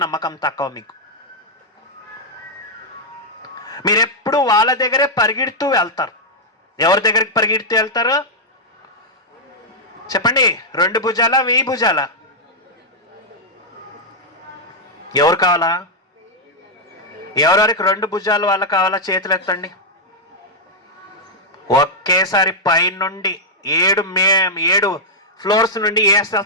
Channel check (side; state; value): both; normal; correlation -0.04